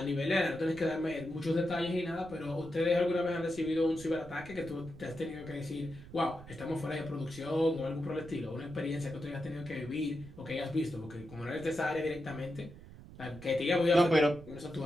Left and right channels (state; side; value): noise; right; rumble, 17 dB below the sound